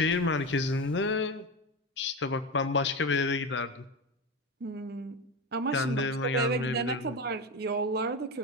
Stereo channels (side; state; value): both; normal; correlation 0.20